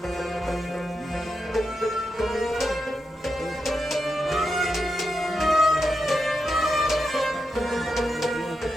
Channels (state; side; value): normal; both; correlation 0.87